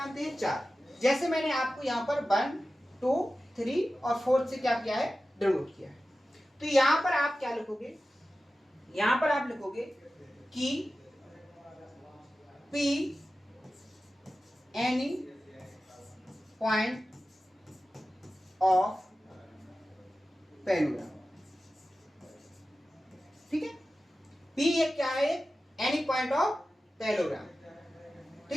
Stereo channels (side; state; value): both; normal; correlation 0.94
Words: हैं? चार। जैसे मैंने आपको यहाँ पर 1, 2, 3 और 4 से क्या किया है, डिनोट किया है। तो यहाँ पर आप क्या लिखोगे, यहाँ पर आप लिखोगे कि P any point of parallelogram, ठीक है। पी एक क्या है, एनी पॉइंट ऑफ पैलोग्राम,